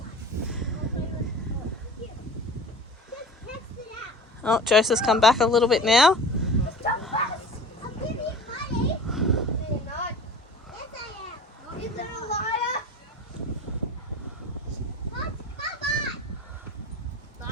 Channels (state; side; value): normal; both; correlation 0.38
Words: Oh, Joseph's come back a little bit now.